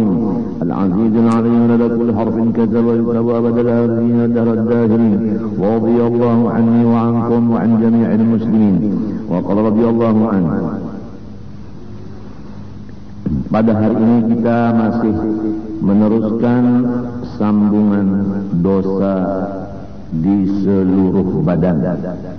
العزيز العليم لدى كل حرف كتب ويكتب أبد الآخرين دهر الداخلين. ورضي الله عني وعنكم وعن جميع المسلمين وقال رضي الله عنه. Pada hari ini kita masih meneruskan sambungan dosa di seluruh badan.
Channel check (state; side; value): identical; both; correlation 1.00